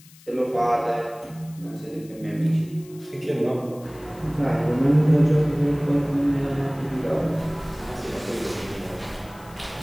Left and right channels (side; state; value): left; noise; hiss, 24 dB below the sound